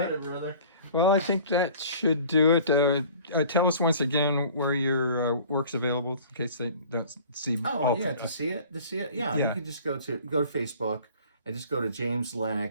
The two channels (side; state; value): both; inverted; correlation -0.48